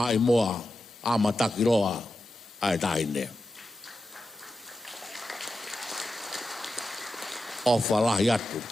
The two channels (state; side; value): normal; both; correlation 0.91